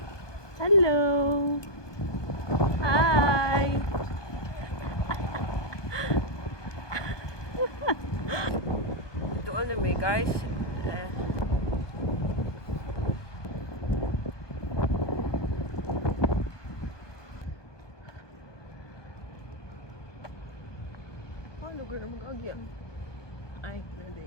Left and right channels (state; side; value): late; right; 1.2 ms